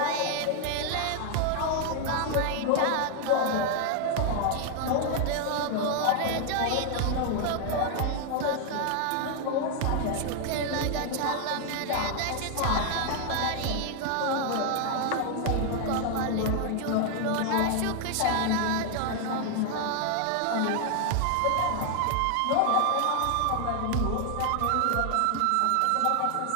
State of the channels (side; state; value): both; different; correlation 0.00